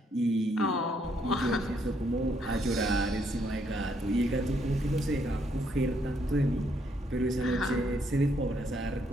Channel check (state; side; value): normal; both; correlation 0.72